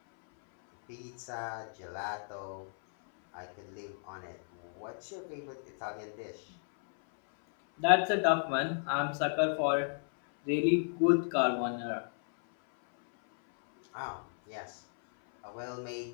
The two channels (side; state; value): right; silent; 55 dB below the other